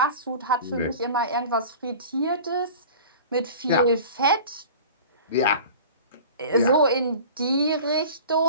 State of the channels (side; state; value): both; inverted; correlation -0.39